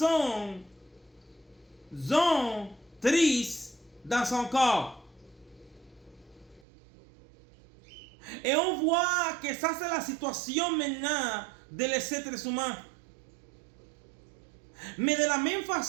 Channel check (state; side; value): drops out; left; at 6.6 s